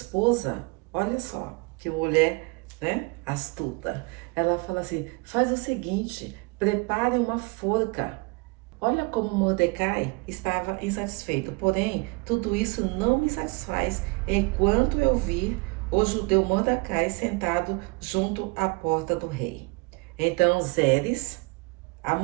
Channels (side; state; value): left; quieter; 28.8 dB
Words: olha só, que mulher, né, astuta. Ela fala assim, faz o seguinte, prepare uma forca. Olha como Mordecai estava insatisfeito. Porém, tudo isso não me satisfaz enquanto eu vir o judeu Mordecai sentado junto à porta do rei. Então Zeres, a